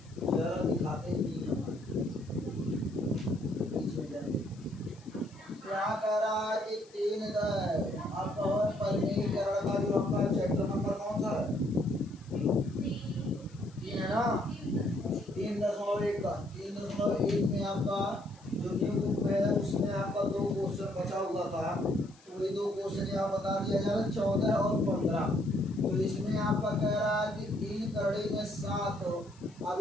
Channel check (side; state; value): left; noise; hiss, 27 dB below the sound